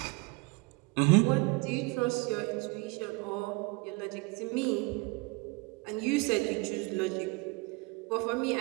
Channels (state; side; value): quieter; left; 26.6 dB